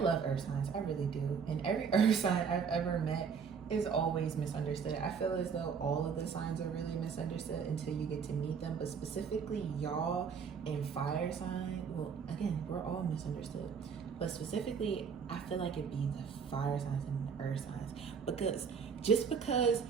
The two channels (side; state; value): left; quieter; 6.3 dB